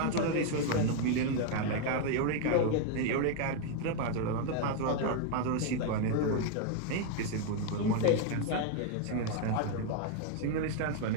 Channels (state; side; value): different; both; correlation 0.00